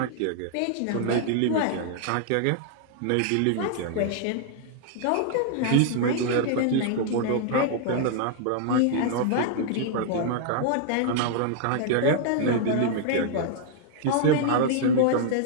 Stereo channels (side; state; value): both; different; correlation -0.01